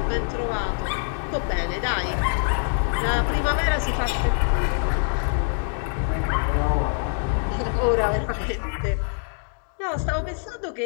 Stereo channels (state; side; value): silent; right; digital silence